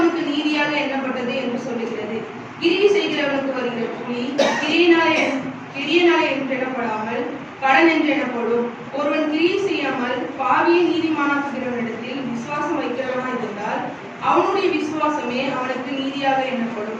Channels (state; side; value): identical; both; correlation 1.00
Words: நீதியாக எண்ணப்பட்டது என்று சொல்லுகிறது. கிரியை செய்கிறவனுக்கு வருகிற கூலி கிரியனாலே என்று எண்ணப்படாமல் கடன் என்று எனப்படும். ஒருவன் கிரியை செய்யாமல் பாவியை நீதிமானாக்குகிறவனிடத்தில் விசுவாசம் வைக்கிறவனாய் இருந்தால் அவனுடைய விசுவாசமே அவனுக்கு நீதியாக எண்ணப்படும்.